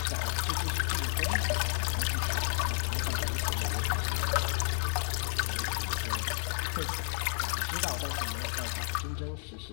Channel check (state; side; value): silent; right; digital silence